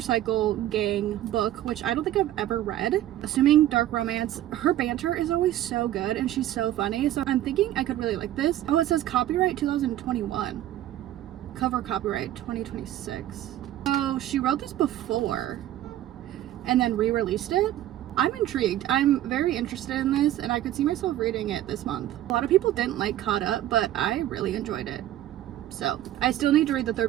gang book, which I don't think I've ever read. Assuming dark romance. Her banter is always so good and she's so funny. So I'm thinking I could really like this. Oh, it says copyright 2021. Cover copyright 2026. So she wrote this before and then re-released it. I'm intrigued. I'm very interested in this and I could see myself reading it this month. A lot of people didn't like Caught Up, but I really enjoyed it. So I still need to read the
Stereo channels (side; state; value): left; quieter; 13.2 dB